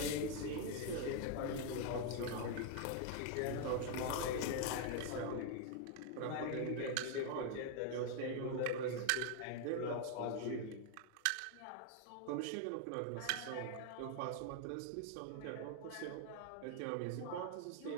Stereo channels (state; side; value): different; both; correlation 0.00